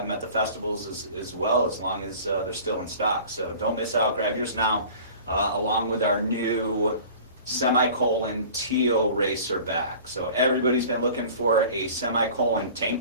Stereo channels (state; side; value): inverted; both; correlation -0.44